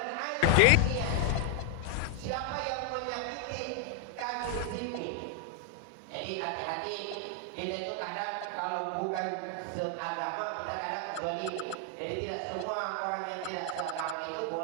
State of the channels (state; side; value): different; both; correlation 0.01